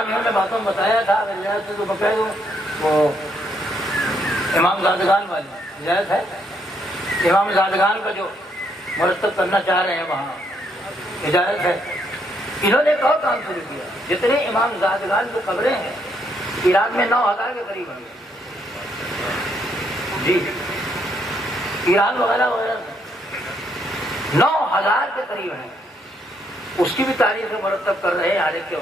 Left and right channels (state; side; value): normal; both; correlation 0.73